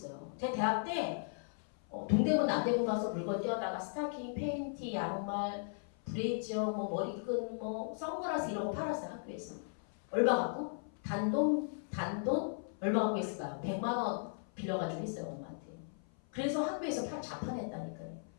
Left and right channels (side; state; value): right; silent; 53 dB below the other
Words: 제가 대학 때 동대문 남대문 가서 물건 떼어다가 스타킹, 팬티, 양말, 브레이저, 뭐 머리끈, 뭐 선글라스 이런 거 팔았어요. 학교에서. 얼마 갖고? 단돈 얼마 갖고 있을까요? 100만 원 빌려가지고 했어요. 엄마한테. 그래서 학교에서 자판했다니까요.